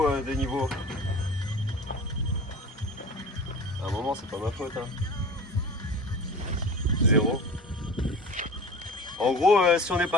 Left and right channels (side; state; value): both; normal; correlation 0.37